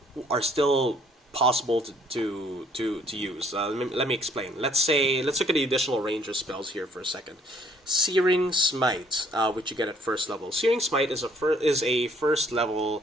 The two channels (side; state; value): both; normal; correlation 0.62